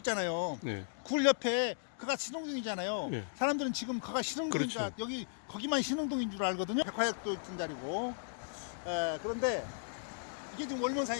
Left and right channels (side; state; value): right; silent; digital silence